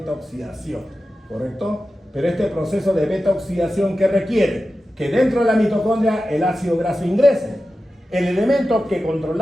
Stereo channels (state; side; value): normal; both; correlation 0.93